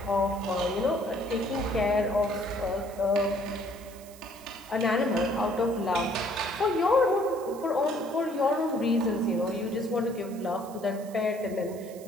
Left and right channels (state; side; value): noise; right; hiss, 21 dB below the sound